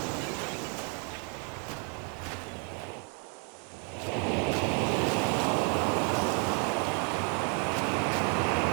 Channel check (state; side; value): quieter; left; 38.8 dB